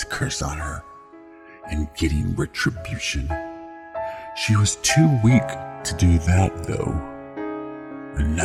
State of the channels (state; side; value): identical; both; correlation 1.00